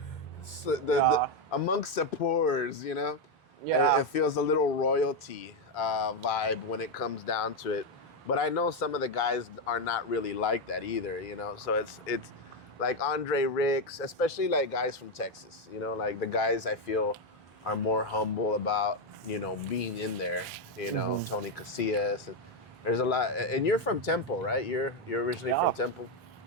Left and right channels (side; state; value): both; normal; correlation 0.06